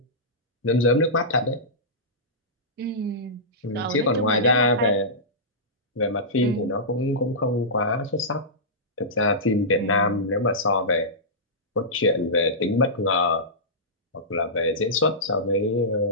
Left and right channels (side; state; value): both; normal; correlation -0.16